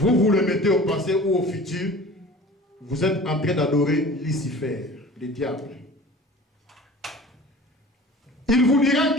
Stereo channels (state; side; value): normal; both; correlation 0.42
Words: le mettez au passé ou au futur, vous êtes en train d'adorer Lucifer, le diable. Il vous dira